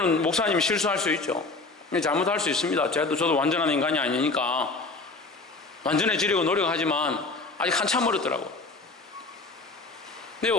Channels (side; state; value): right; quieter; 3.6 dB